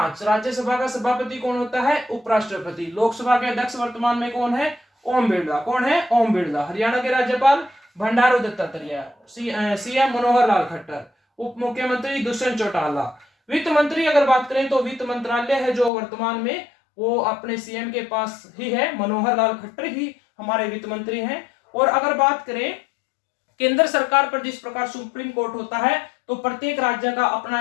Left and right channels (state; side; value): drops out; right; at 15.9 s